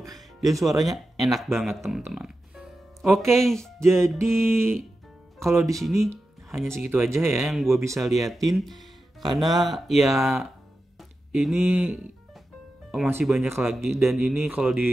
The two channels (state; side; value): normal; both; correlation 0.91